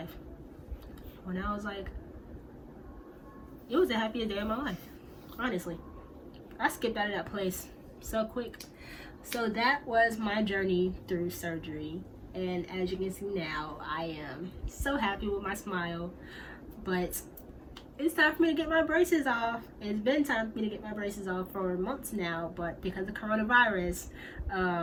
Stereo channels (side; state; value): both; identical; correlation 1.00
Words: When I was like, it was the happiest day of my life. Honestly. I skipped out of that place so quick. So that was my journey through surgery. And as you can see now, I am so happy with my smile. But it's time for me to get my braces off. It's been time for me to get my braces off for months now, but because of coronavirus,